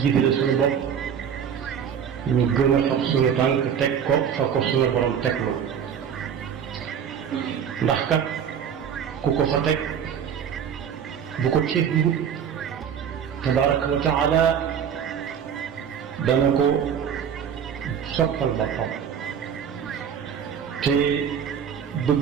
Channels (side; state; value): left; quieter; 8.0 dB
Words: jiitale suñu bopp ñu gën a fab suñu tànk teg ko fa ko suñu borom teglu ndax kat ku ko fa teg bu ko teglu tabaraka wa taala dana ko soppal boppam te